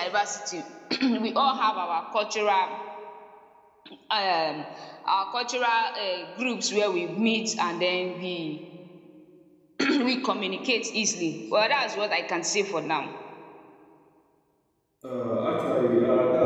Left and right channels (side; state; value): both; identical; correlation 1.00